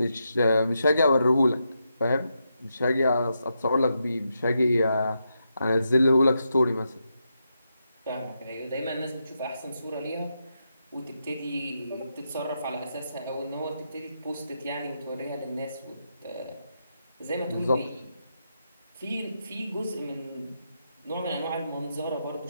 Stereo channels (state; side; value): inverted; both; correlation -0.84